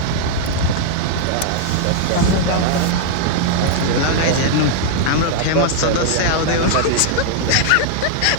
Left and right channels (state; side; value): different; both; correlation -0.01